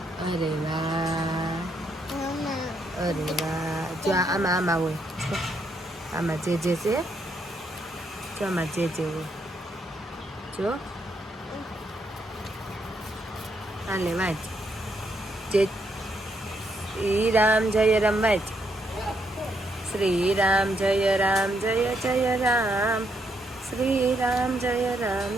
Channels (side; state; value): both; normal; correlation 0.76